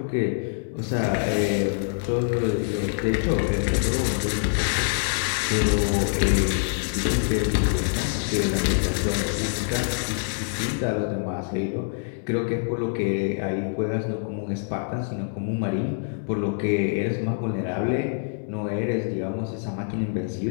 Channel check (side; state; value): right; silent; 60 dB below the other